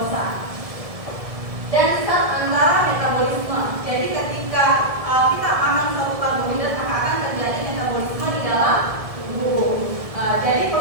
Dan tetap antara metabolisme. Jadi ketika kita makan suatu karbohidrat maka akan terjadi metabolisme di dalam tubuh. Jadi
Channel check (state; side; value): late; left; 1.7 ms